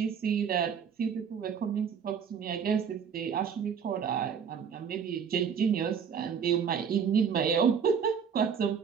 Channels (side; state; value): left; quieter; 7.0 dB